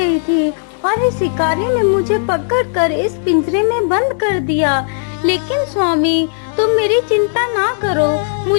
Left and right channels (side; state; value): right; silent; digital silence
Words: थी और इस शिकारी ने मुझे पकड़कर इस पिंजरे में बंद कर दिया। लेकिन स्वामी, तुम मेरी चिंता ना करो।